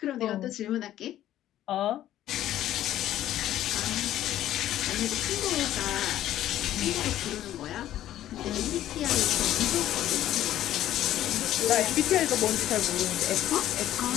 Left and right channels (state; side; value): quieter; right; 12.8 dB